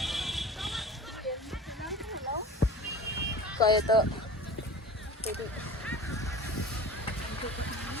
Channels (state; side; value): normal; both; correlation 0.38